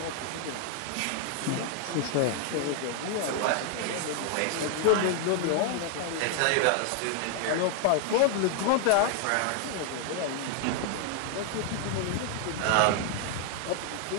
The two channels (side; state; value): both; different; correlation 0.00